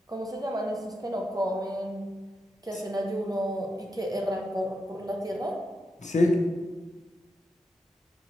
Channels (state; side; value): normal; both; correlation 0.85